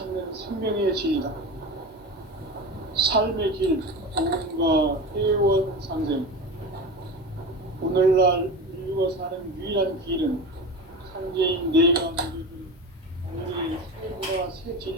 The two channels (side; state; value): both; normal; correlation 0.27